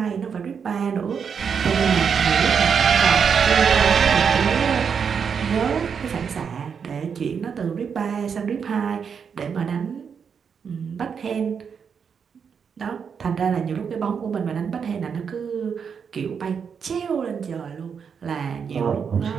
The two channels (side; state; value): left; quieter; 6.7 dB